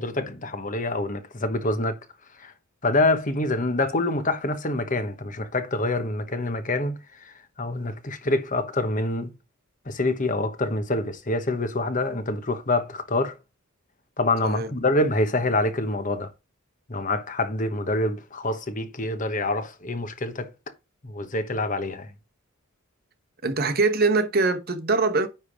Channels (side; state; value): both; normal; correlation 0.15